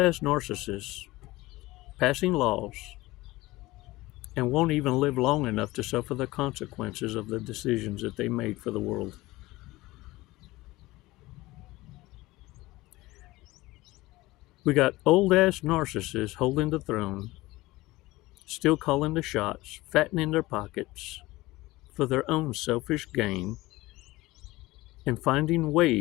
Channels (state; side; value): quieter; right; 19.3 dB